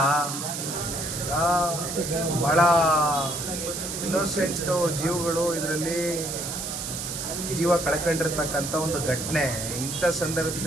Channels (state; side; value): noise; right; hiss, 5 dB below the sound